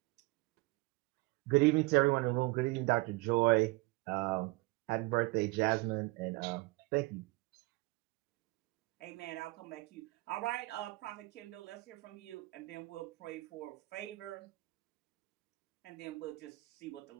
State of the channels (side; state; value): left; quieter; 23.1 dB